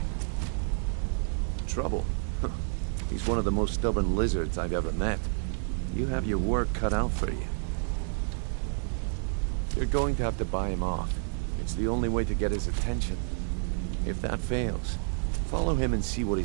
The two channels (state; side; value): silent; left; digital silence